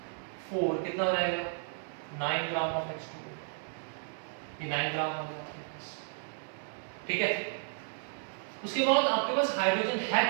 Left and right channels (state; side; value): silent; left; 56 dB below the other